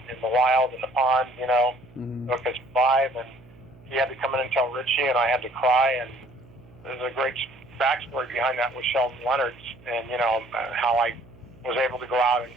the wild, in the pond, you know, so it could survive. And he had to come in and tell Ritchie, and I had to cry. And there's a great backstory behind that with Sheldon Leonard's, and, you know, how I was able to go out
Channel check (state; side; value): noise; right; hum, 24 dB below the sound